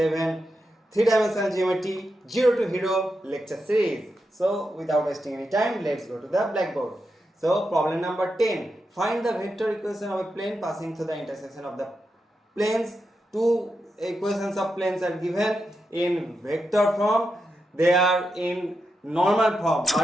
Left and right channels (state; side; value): normal; both; correlation 0.87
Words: 3-dimensional geometry, 0 to hero lecture series. So without wasting any time, let's go to the blackboard. So problem number 10, find the vector equation of a plane passing through the intersection of the planes. Two equations of planes are given in vector form. They are in normal form,